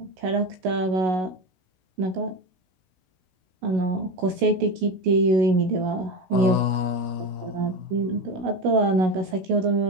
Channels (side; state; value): left; late; 16 ms